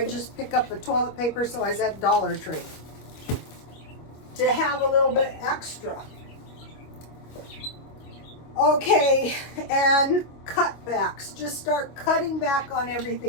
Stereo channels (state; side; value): late; right; 25 ms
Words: just pick up the toilet paper, so I was at Dollar Tree to have a little bit extra. Okay, and cutbacks. Just start cutting back on